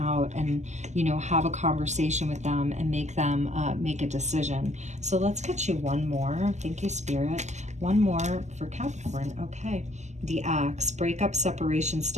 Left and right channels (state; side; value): late; left; 0.33 ms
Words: and, you know, have a conversation with them and make them make a decision. So let's get you one more. Thank you, Spirit. One more for Capricorn. Okay. The Axe. Breakup, separation,